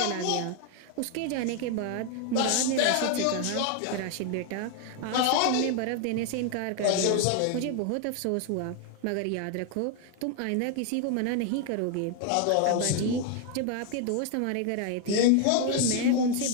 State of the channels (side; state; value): both; different; correlation 0.01